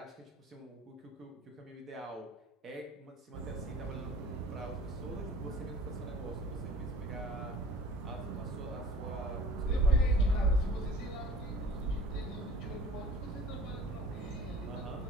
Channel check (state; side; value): normal; both; correlation 0.44